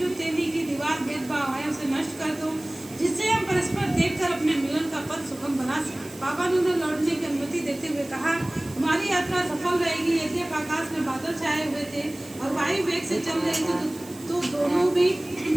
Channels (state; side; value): noise; right; hiss, 19 dB below the sound